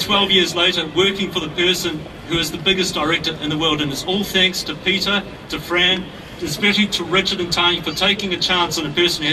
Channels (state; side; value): identical; both; correlation 1.00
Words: years later working for the person who is the biggest director in the world. And it's all thanks to Peter, to Fran, especially to Richard and Tanya for taking a chance on a person who